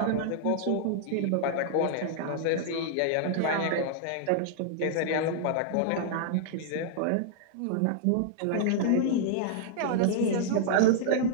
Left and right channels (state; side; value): different; both; correlation -0.01